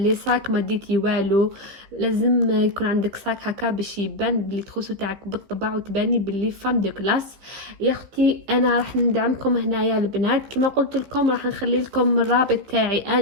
ساك ما ديتي والو. لازم يكون عندك ساك هكا باش يبان بلي تخوصو تاعك بالطبع وتباني بلي فام دو كلاس. يا اختي انا راح ندعمكم هنايا البنات، كما قلت لكم راح نخلي لكم الرابط تاعي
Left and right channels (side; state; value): left; late; 15 ms